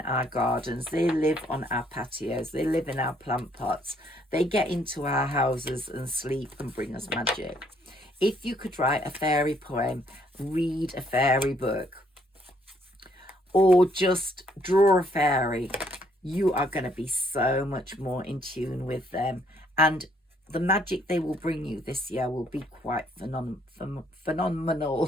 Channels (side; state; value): both; normal; correlation 0.67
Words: our gardens. They live on our patios. They live in our plant pots. They get into our houses and sleep and bring us magic. If you could write a fairy poem, read a fairy book, or just draw a fairy, you are going to be so much more in tune with them. And the magic they will bring you this year will be quite